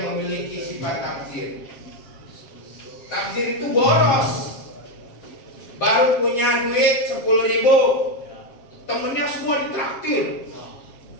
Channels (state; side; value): late; right; 7.4 ms